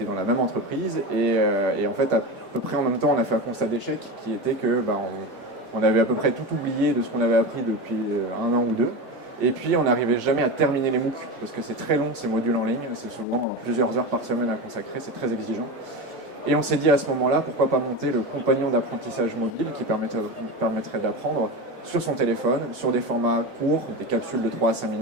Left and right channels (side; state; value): both; normal; correlation 0.23